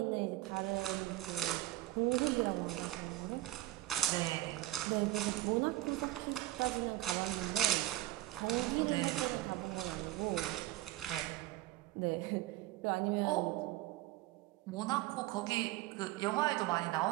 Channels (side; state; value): left; quieter; 16.3 dB